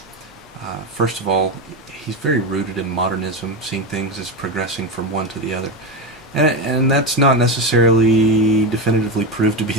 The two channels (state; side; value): normal; both; correlation 0.16